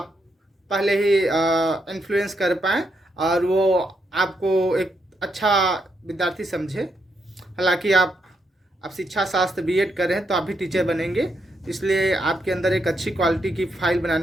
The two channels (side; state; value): both; normal; correlation 0.80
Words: पहले ही इन्फ्लुएंस कर पाएँ और वो आपको एक अच्छा विद्यार्थी समझे। हालांकि आप शिक्षा शास्त्र B.Ed कर रहे हैं तो आप भी टीचर बनेंगे, इसलिए आपके अंदर एक अच्छी क्वालिटी की फाइल